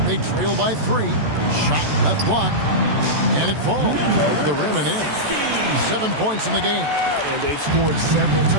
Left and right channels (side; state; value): left; late; 14 ms